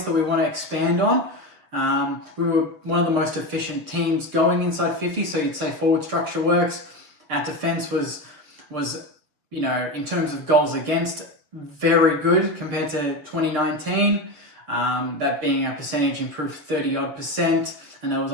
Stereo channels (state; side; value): late; left; 6.9 ms